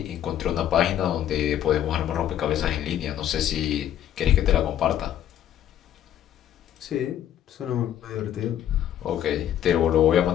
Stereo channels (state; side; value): quieter; right; 11.0 dB